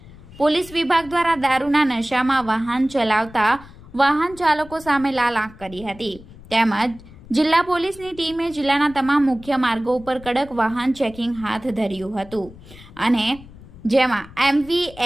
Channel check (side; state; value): left; noise; rumble, 20 dB below the sound